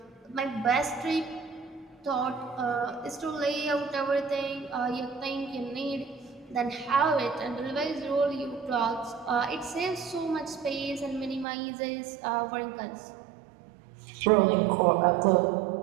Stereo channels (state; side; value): drops out; left; at 11.5 s